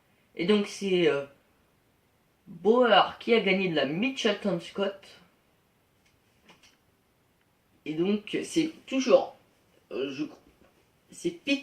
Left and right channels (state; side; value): identical; both; correlation 1.00